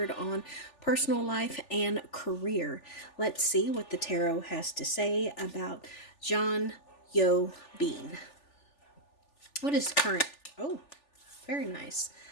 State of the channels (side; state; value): right; late; 3.4 ms